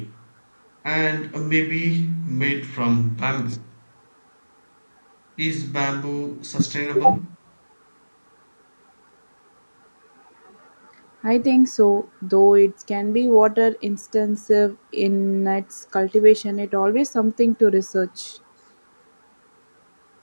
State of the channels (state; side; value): inverted; both; correlation -1.00